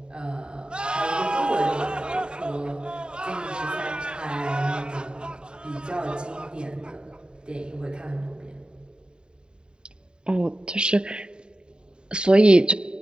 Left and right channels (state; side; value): late; left; 0.050 ms